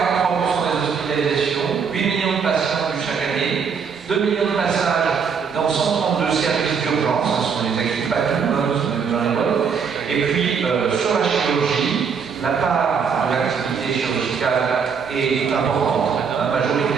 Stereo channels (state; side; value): quieter; left; 6.3 dB